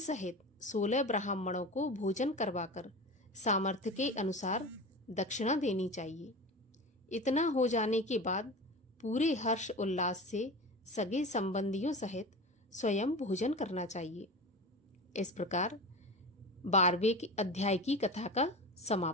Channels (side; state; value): both; normal; correlation 0.30